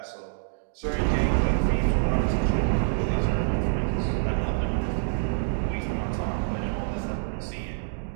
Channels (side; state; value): left; silent; digital silence